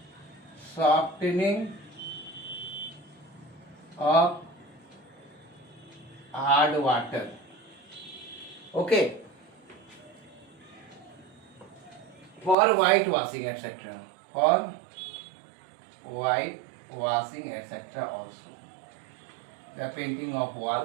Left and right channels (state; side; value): drops out; left; at 12.6 s